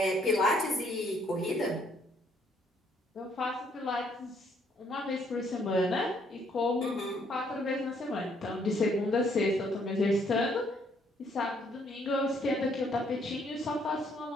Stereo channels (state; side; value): normal; both; correlation 0.67